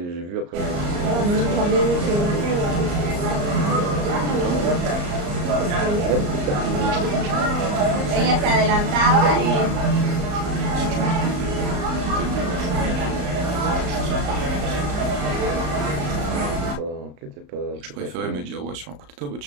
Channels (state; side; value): late; left; 34 ms